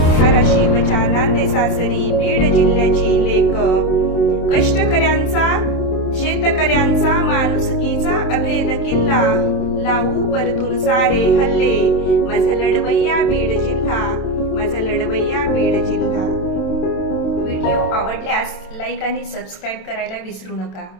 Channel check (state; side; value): late; right; 27 ms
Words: धाराशिवच्या नांदे सासरी बीड जिल्ह्याची लेक। कष्टकऱ्यांचा शेतकऱ्यांचा माणुसकीचा अभेद किल्ला, लावू परतून सारे हल्ले माझा लढवय्या बीड जिल्हा, माझा लढवय्या बीड जिल्हा। व्हिडिओ आवडल्यास लाईक आणि सबस्क्राईब करायला विसरू नका।